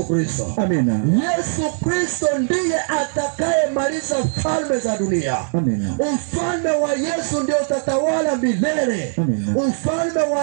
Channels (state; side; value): silent; left; 56 dB below the other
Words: Kristo. Amina. Yesu Kristo ndiye atakaye maliza falme za dunia. Amina. Ufalme wa Yesu ndio utatawala milele. Amina. Ufalme